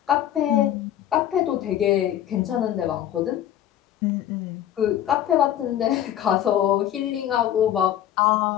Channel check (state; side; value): quieter; right; 11.5 dB